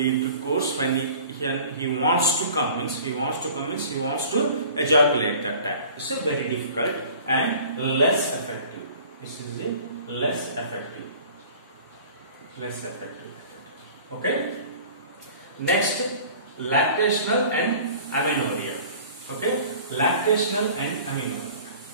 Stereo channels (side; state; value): both; inverted; correlation -0.46